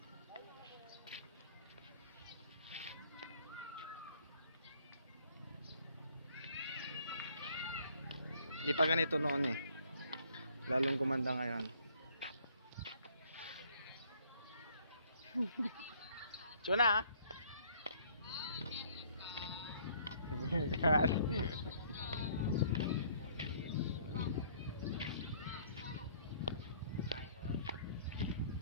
Hindi pa ganito noon eh. Lalong gumanda ngayon. Chuna!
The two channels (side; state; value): both; inverted; correlation -0.61